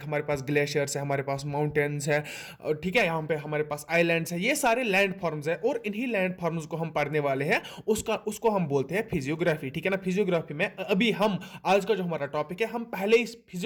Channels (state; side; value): identical; both; correlation 1.00